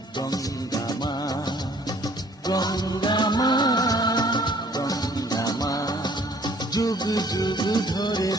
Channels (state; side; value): normal; both; correlation 0.57